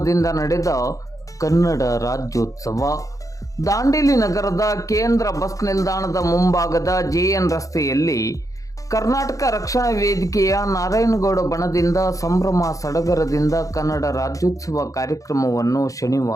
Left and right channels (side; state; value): right; late; 0.16 ms